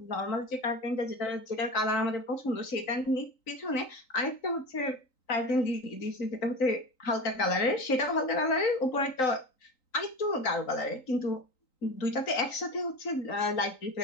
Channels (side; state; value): right; late; 3.9 ms